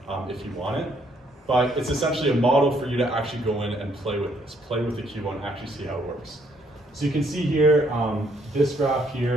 if you want it. But it's essentially a model for you to actually go in and play with this, play with the QBO and actually see how it works. So you can see here, this graph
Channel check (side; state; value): both; normal; correlation 0.68